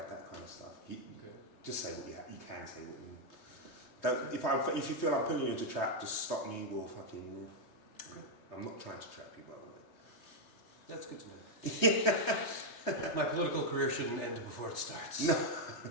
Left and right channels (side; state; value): right; late; 3.2 ms